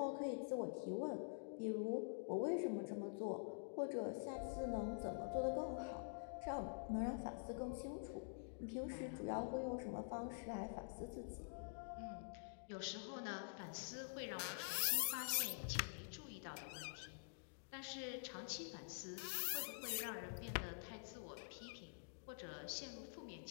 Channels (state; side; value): silent; right; digital silence